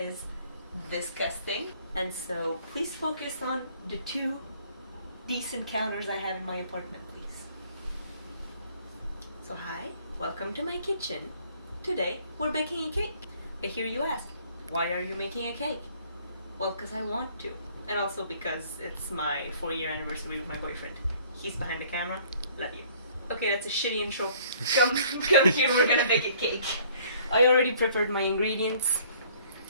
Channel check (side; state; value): both; inverted; correlation -0.57